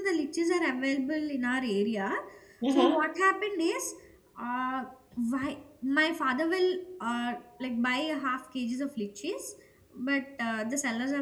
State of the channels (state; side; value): identical; both; correlation 1.00